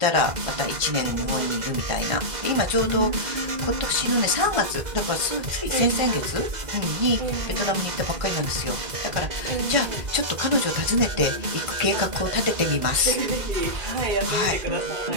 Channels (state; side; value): late; left; 2.0 ms